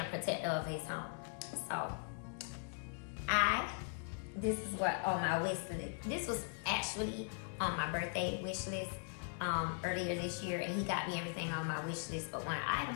protector of his home. So this is what on my wish list. This was actually on my birthday wish list earlier this year, and he got me everything on my wish list but one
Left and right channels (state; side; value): silent; right; 51 dB below the other